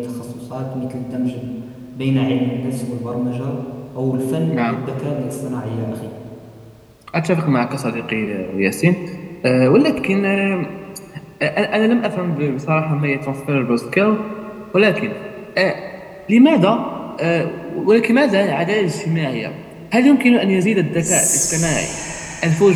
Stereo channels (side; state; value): both; identical; correlation 1.00